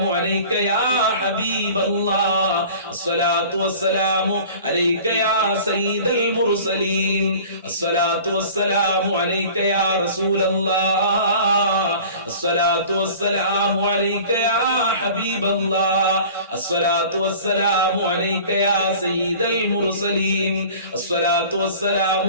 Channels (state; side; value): inverted; both; correlation -0.43